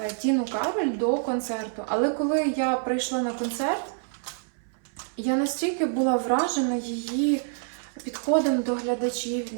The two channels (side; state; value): left; silent; 60 dB below the other